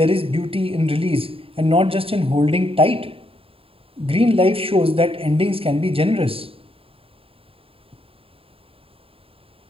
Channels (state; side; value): late; left; 0.27 ms